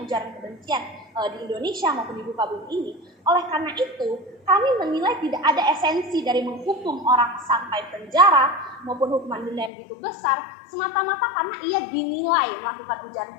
ujaran kebencian di Indonesia maupun di muka bumi ini. Oleh karena itu, kami menilai tidak ada esensi dari menghukum orang sampai penjara maupun hukuman denda yang begitu besar semata-mata karena ia dinilai melakukan ujaran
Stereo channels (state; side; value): drops out; right; at 9.7 s